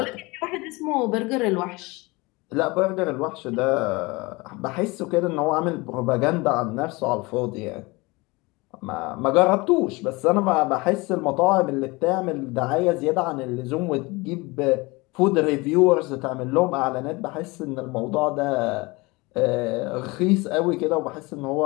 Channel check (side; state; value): right; quieter; 24.3 dB